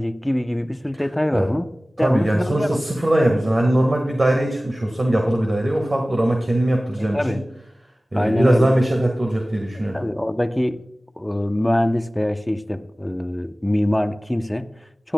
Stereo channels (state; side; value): normal; both; correlation 0.97